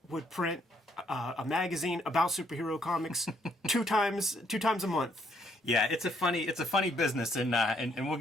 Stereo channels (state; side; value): normal; both; correlation 0.70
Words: would print a magazine about superhero comics two times a month. Yeah, it's a funny business, and we'll